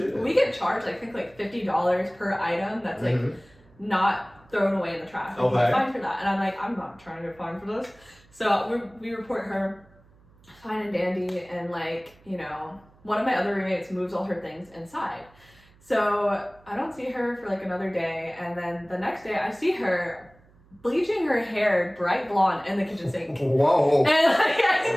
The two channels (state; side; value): noise; right; hum, 28 dB below the sound